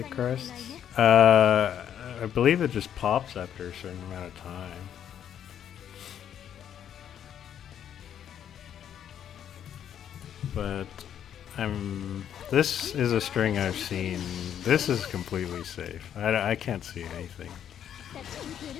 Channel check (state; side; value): quieter; right; 9.5 dB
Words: crests. I believe it just pops after a certain amount of time. But this is a string I've seen. This is completely safe. I can't see anything.